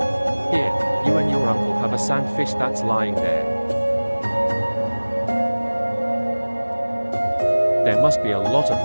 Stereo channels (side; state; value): both; inverted; correlation -1.00